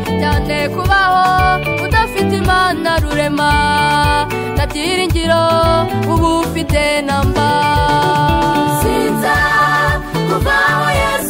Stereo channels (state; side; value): identical; both; correlation 1.00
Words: cyane kubaho udafite Imana rurema nta byiringiro ubu ufite namba sinza kuvaho